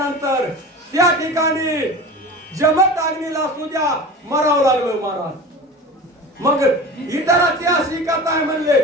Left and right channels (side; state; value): both; normal; correlation 0.34